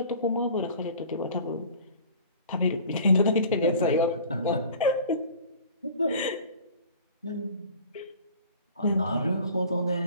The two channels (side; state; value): both; inverted; correlation -0.45